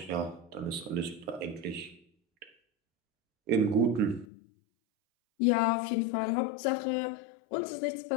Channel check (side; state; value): right; drops out; at 4.2 s